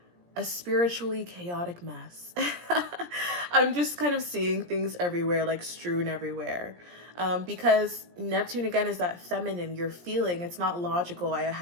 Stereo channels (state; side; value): late; left; 17 ms